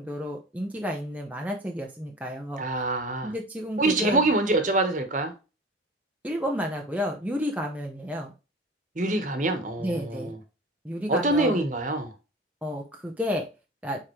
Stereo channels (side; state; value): both; normal; correlation 0.37